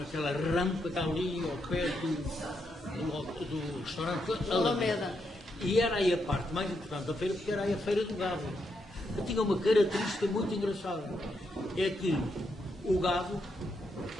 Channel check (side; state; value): both; normal; correlation 0.81